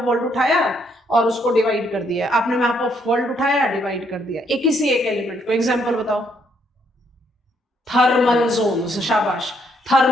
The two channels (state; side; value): normal; both; correlation 0.71